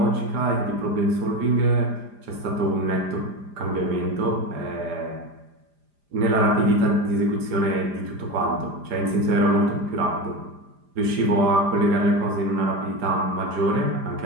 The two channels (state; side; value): late; left; 5.0 ms